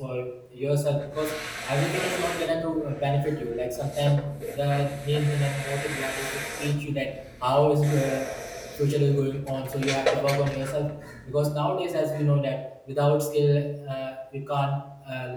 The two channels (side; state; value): both; identical; correlation 1.00